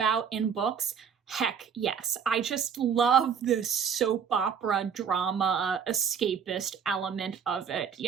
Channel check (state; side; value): quieter; left; 7.2 dB